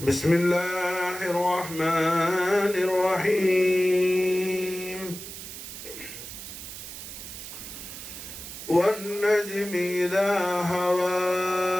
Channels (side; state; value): right; noise; hiss, 11 dB below the sound